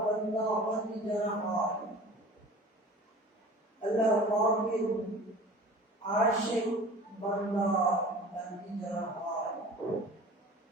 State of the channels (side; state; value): both; normal; correlation 0.42